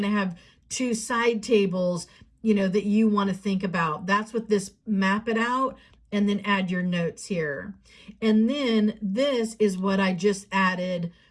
to have 2 side tables, that you want to think about. That's what this map it out, and then add your notes here. And then this is what I just added,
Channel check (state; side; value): identical; both; correlation 1.00